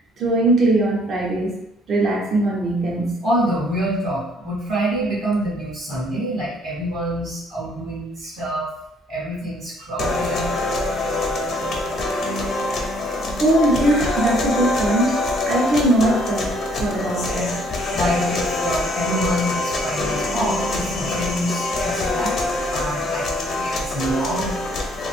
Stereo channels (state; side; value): normal; both; correlation 0.63